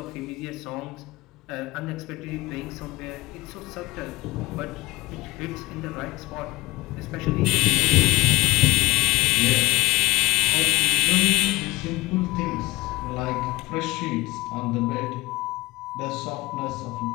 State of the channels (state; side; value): quieter; right; 20.3 dB